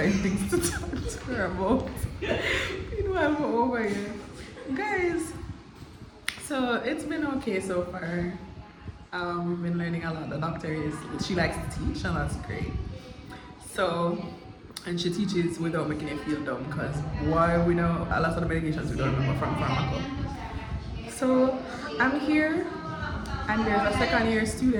things to talk to her about. Meanwhile, we're over here, guys. So it's been okay so far. We've been learning a lot. The doctor she likes to teach, and that's great. So. And she teaches without making it feel dumb, because why, we know a lot of the medications we don't remember from pharmaco. So I'm here, and there's a second year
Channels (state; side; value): identical; both; correlation 1.00